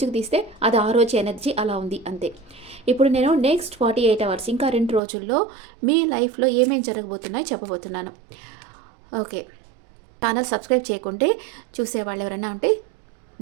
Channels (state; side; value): drops out; left; at 5.0 s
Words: తీస్తే అది ఆ రోజు ఎనర్జీ అలా ఉంది అంతే. ఇప్పుడు నేను నెక్స్ట్ 48 అవర్స్, ఇంకా 2 రోజుల్లో మీ లైఫ్లో ఏమేమి జరగబోతున్నాయో చెప్పబోతున్నాను. ఓకే, ఛానల్ సబ్స్క్రైబ్ చేయకుంటే చూసేవాళ్ళు ఎవరైనా ఉంటే